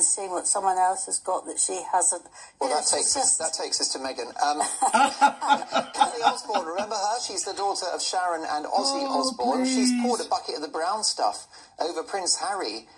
seeing what someone else has got that she hasn't. Well, that takes us to Meghan. Kelly Osbourne, remember her? She's the daughter of Sharon and Ozzy Osbourne. Please. She's poured a bucket of the brown stuff over Prince Harry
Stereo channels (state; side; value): identical; both; correlation 1.00